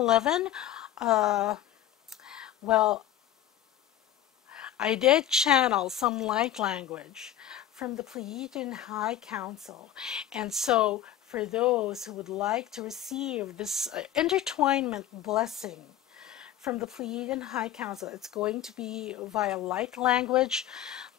well, I did channel some light language from the Pleiadian High Council. And so for those who would like to receive this intertwinement blessing from the Pleiadian High Council, it's going to be via light language.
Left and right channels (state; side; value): quieter; right; 11.4 dB